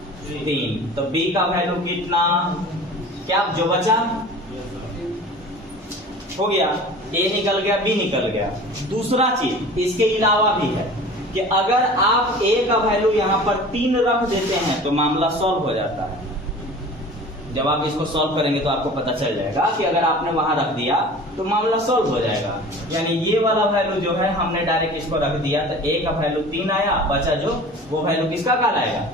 3, तो b का वैल्यू कितना, क्या जो बचा हो गया, a निकल गया b निकल गया। दूसरा चीज इसके अलावा भी है कि अगर आप a का वैल्यू यहाँ पर 3 रख देते हैं तो मामला सॉल्व हो जाता है। जब आप इसको सॉल्व करेंगे तो आपको पता चल जाएगा कि अगर आपने वहां रख दिया तो मामला सॉल्व हो जाएगा। यानी ये वाला वैल्यू जो है हमने डायरेक्ट इसको रख दिया तो a का वैल्यू 3 आया, बचा जो वो वैल्यू किसका कहलाएगा,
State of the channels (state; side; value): normal; both; correlation 0.41